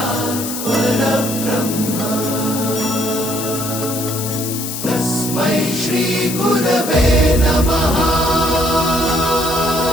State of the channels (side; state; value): left; noise; hiss, 6 dB below the sound